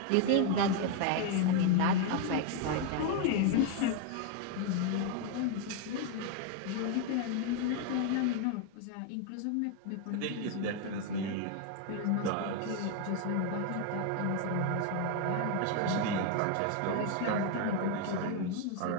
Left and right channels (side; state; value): both; different; correlation 0.01